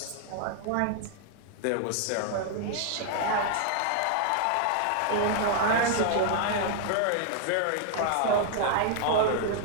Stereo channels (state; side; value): different; both; correlation 0.00